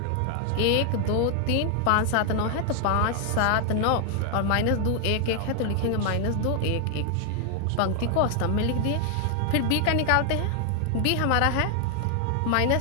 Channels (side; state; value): both; different; correlation 0.00